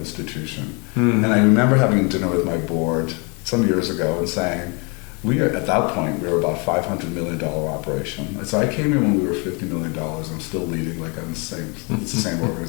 And I remember having dinner with my board some years ago and saying, at that point, we were about $500 million operation. So I came in when we were $50 million. I'm still leading like I'm it's the same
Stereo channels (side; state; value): right; quieter; 32.2 dB